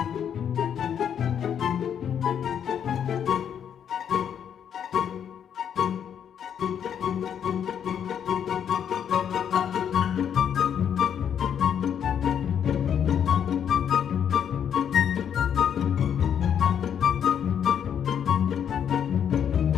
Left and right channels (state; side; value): quieter; right; 8.6 dB